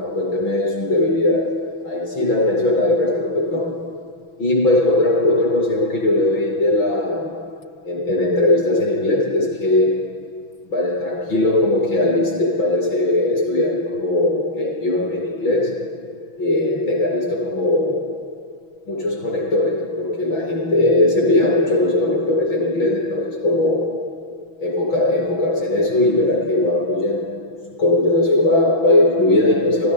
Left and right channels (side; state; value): right; late; 6.1 ms